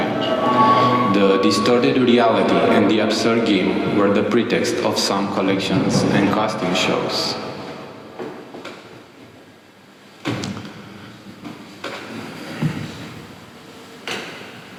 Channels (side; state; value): both; identical; correlation 1.00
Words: The distorted reality and the absurd game were the pretext of some collections and costume shows.